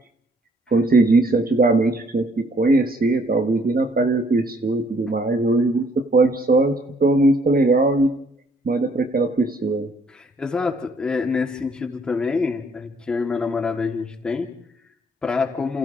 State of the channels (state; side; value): normal; both; correlation 0.64